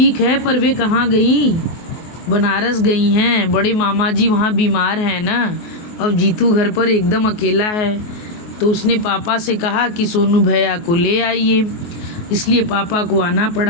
है, पर वे कहाँ गई? बनारस गई हैं, बड़े मामा जी वहाँ बीमार हैं ना। अब जीतू घर पर एकदम अकेला है, तो उसने पापा से कहा कि सोनू भैया को ले आइए, इसलिए पापा को आना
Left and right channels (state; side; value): late; right; 24 ms